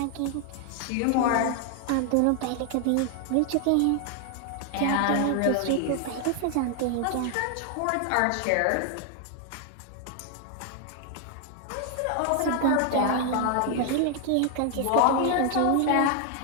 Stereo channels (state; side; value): different; both; correlation 0.00